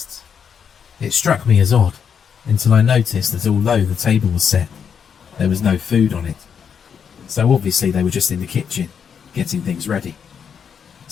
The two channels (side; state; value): right; quieter; 7.2 dB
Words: It struck me as odd, until I noticed that although the table was set, there was no food on it. So obviously they were just in the kitchen, getting things ready.